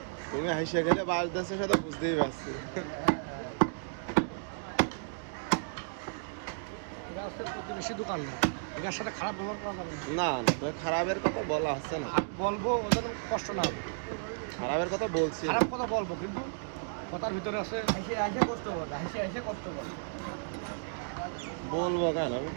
তুমি হাসিয়া গেলে বাজদাসের সাথে বুঝতেই পারছি। বেশি দোকান না, ওদের সাথে খারাপ ব্যবহার করা যাবে না। না না তো খারাপের কথা বলা হচ্ছে না, বলবো ওদের কষ্ট না হবে। খারাপের কথা বলছি না। খারাপ কথা বলবো কিন্তু কথার ভিতরে আছে আইসে আইসে কষ্ট করবে, আইসে আইসে কষ্ট করবে। বলবো কেন আমি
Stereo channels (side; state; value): left; silent; digital silence